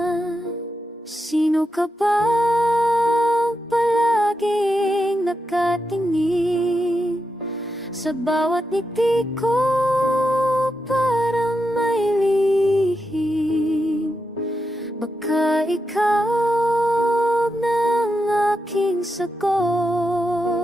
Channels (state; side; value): normal; both; correlation 0.86